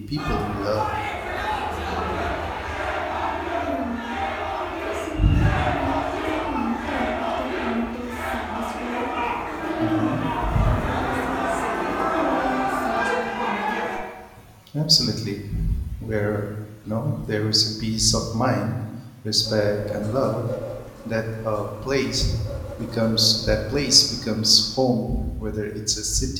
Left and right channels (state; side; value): identical; both; correlation 1.00